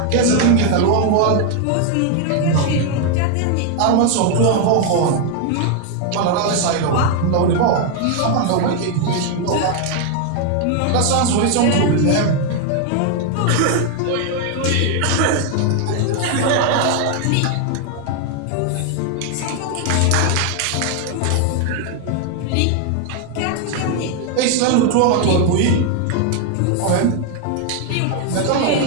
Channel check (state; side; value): different; both; correlation 0.01